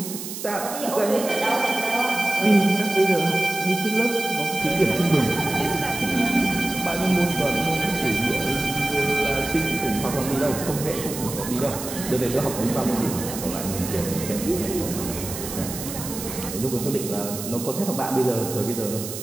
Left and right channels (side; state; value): right; noise; hiss, 8 dB below the sound